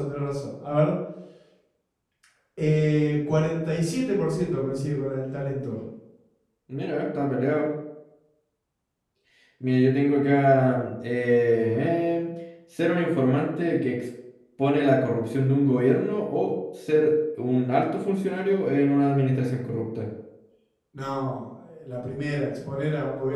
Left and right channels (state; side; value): identical; both; correlation 1.00